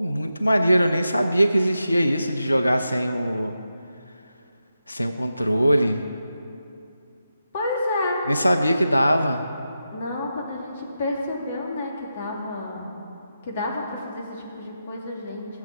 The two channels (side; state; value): both; inverted; correlation -0.89